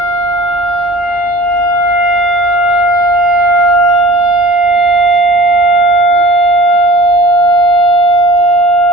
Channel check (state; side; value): normal; both; correlation 0.42